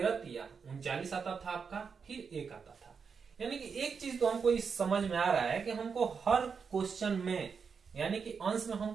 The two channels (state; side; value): quieter; left; 5.9 dB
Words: तिया 39 आता था आपका, फिर 1 आता था। यानी कि एक चीज तो हमको इस समझ में आ रहा है कि हमको हर क्वेश्चन में यानी कि अंश में